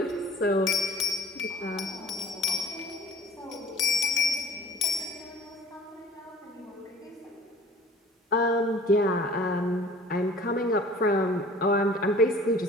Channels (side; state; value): both; normal; correlation 0.48